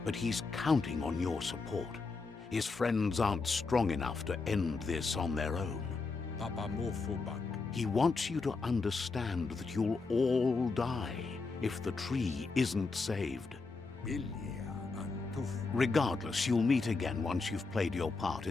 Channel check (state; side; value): quieter; right; 4.1 dB